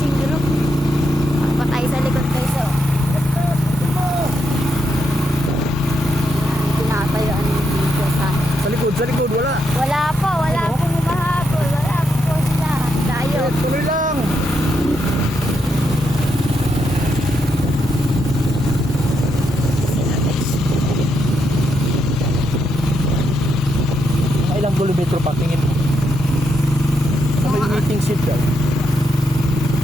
group. Patay sa likod guys, oh. Ayan, tinatayuan dito sa... Sa likod, wala. Wala po humahabol. Wala po sila. Tayo. Eh, tuloy lang. Ilang kilometro pa tingin mo? Sa may meeting seat daw.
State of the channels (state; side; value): normal; both; correlation 0.80